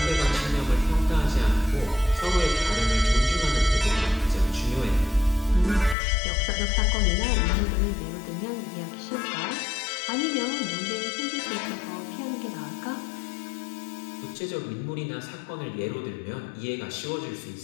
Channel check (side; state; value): right; drops out; at 6.0 s